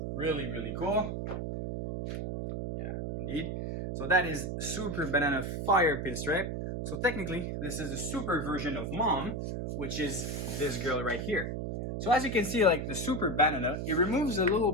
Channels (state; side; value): noise; right; hum, 3 dB below the sound